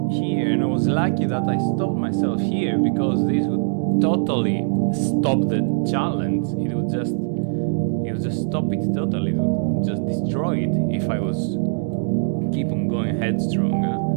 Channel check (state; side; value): silent; left; 64 dB below the other